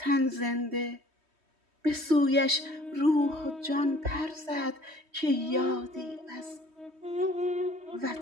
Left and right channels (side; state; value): left; late; 3.2 ms